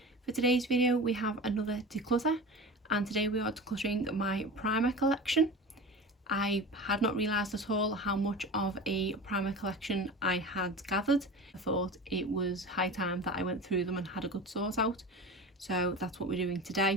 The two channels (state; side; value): normal; both; correlation 0.32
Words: For today's video we have another declutter, and today we are decluttering my primer collection. I had not realised at all how much of a primer collection I had gathered. I thought it was high time that I went through them and had a good sort out, so that's what we're doing